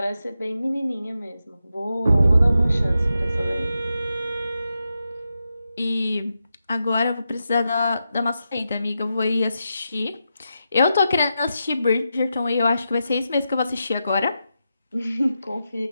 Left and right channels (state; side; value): inverted; both; correlation -0.88